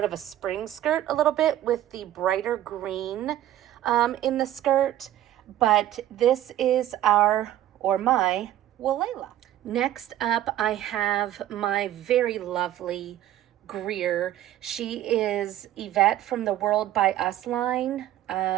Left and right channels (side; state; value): left; quieter; 12.9 dB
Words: of a spring skirt a little bit with the brighter green in the skirt. But this is my Walela. Next up, I have my very lovely Greer. She is Yvette from the World by Us line.